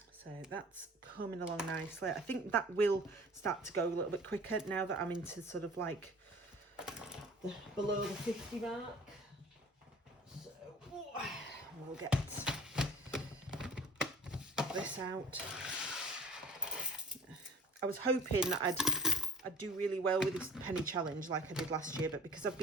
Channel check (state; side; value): normal; both; correlation 0.49